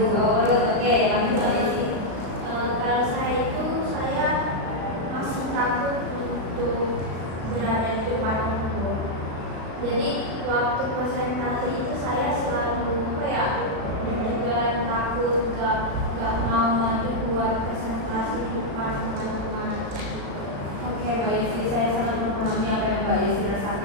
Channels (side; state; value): left; late; 35 ms